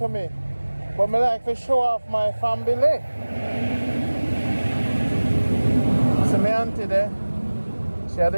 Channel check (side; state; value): both; inverted; correlation -1.00